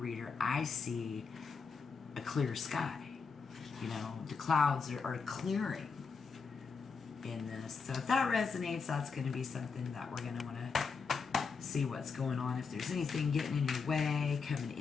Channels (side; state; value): right; quieter; 5.2 dB